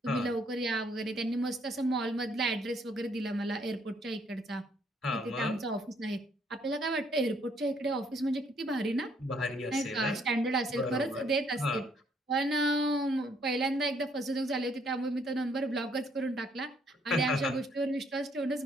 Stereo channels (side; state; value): both; normal; correlation 0.67